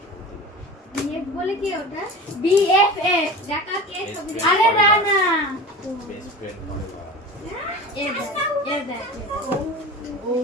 বিএফ বলে কি ওটা? বিএফএফ দেখা কে ছবি? আরে না না, বেস্ট ফ্রেন্ড ফরএভার। ও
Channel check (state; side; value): normal; both; correlation 0.33